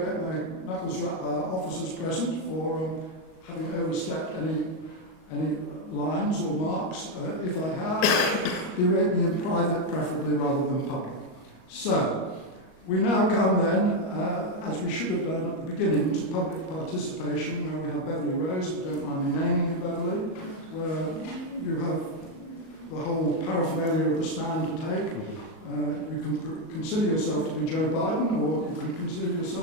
get my knuckles rapped by our officers present for having overstepped any lines or marks. If I have, berate me in private, preferably rather than public. So, we now come then, as we should have done at the beginning, to public participation, where we have Beverly Rose, if you don't mind me naming you, Beverly, where you have the whole paraphernalia of the stand to take. You can consider yourself to be Joe Biden, or you can consider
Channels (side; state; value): right; late; 38 ms